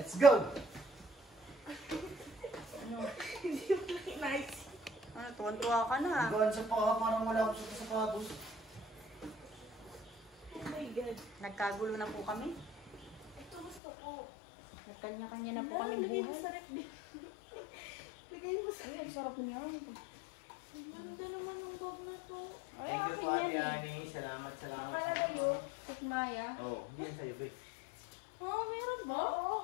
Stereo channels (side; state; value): right; drops out; at 13.8 s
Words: go! Hindi mo lang inaisip. Ano, tuwan-tuwa ka na. Ang gaan sa paa, parang wala akong suot sa sapatos. Oh my God. Nagkagulo na po kami. Ito gusto ko. Nagkanya-kanya na po Ano, kami lagay mo buhay. sa ref. Lagay mo sa ref. Sarap niya. Ang ganda naman ng bag na to. Thank you po Ate Ani. Salamat. Napalagayo, Tikmaya. Oo, hindi yan sa'yo, babe. Oh, meron ba? Oo.